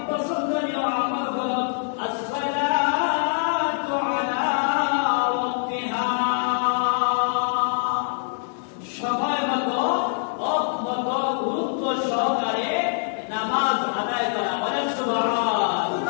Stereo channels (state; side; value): silent; right; digital silence